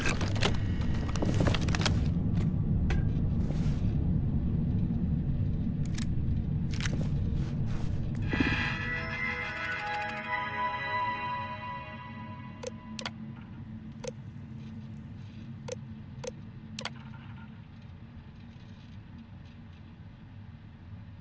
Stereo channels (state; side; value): identical; both; correlation 1.00